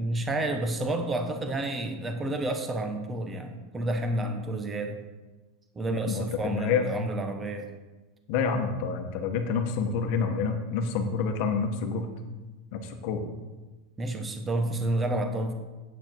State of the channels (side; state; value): both; normal; correlation 0.37